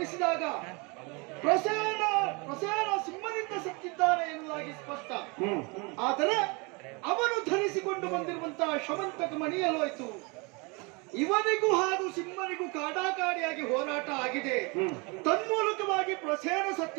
ಪ್ರಸೇನ ಸಿಂಹನಿಂದ ಸತ್ತಿದ್ದಾನೆ ಎನ್ನುವುದಾಗಿ ಸ್ಪಷ್ಟ. ಆದರೆ ಅವನು ಧರಿಸಿಕೊಂಡು ಬಂದಿರುವಂತಹ ಶಮಂತಕ ಮಣಿಯಲೋಯ್ತು. ಇವನಿಗೂ ಹಾಗೂ ಸಿಂಹನಿಗೂ ಕಾಡಾಕಾಡಿಯಾಗಿ ಹೋರಾಟ ಆಗಿದೆ. ತನ್ಮೂಲಕವಾಗಿ ಪ್ರಸೇನ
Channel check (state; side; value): quieter; left; 29.4 dB